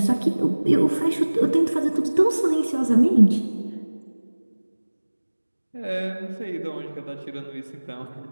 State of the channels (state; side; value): inverted; both; correlation -1.00